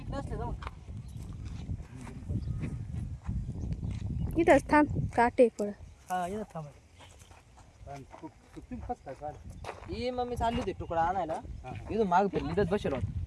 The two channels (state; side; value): identical; both; correlation 1.00